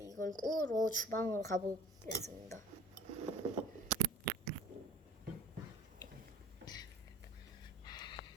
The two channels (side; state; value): both; normal; correlation 0.46